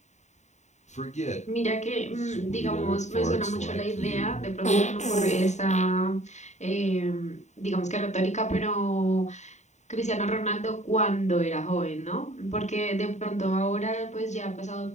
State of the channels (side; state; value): right; late; 0.34 ms